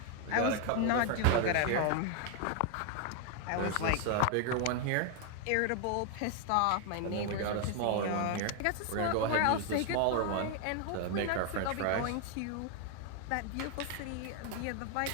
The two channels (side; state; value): both; different; correlation 0.00